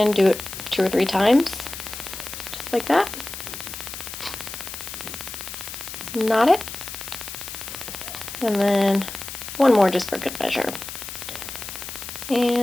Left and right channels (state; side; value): noise; left; hiss, 9 dB below the sound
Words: do it 2 or 3 times, just like that. Knot it, and then one more just for good measure,